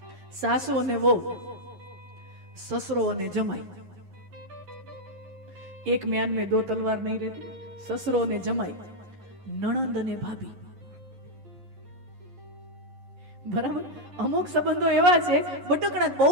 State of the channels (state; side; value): late; left; 11 ms